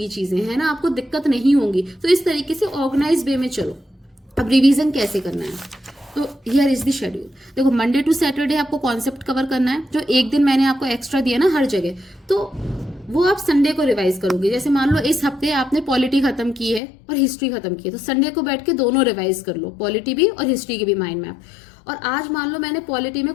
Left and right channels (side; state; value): right; drops out; at 16.8 s